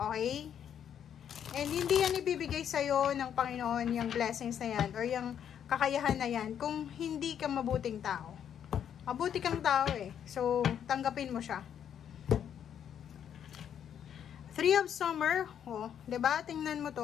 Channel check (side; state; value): right; quieter; 9.0 dB